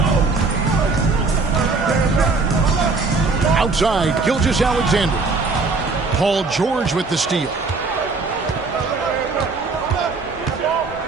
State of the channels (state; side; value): quieter; left; 4.0 dB